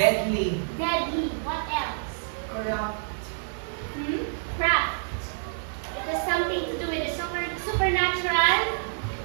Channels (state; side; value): silent; left; digital silence